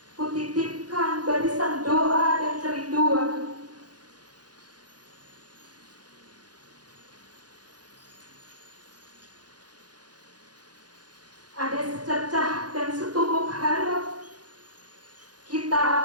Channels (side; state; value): left; late; 0.69 ms